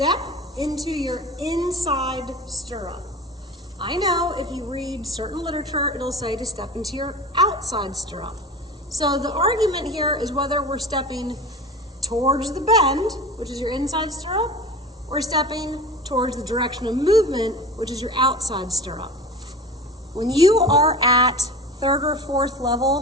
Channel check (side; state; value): both; normal; correlation 0.34